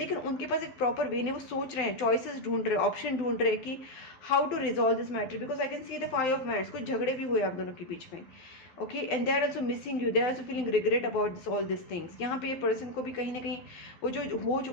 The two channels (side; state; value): right; late; 12 ms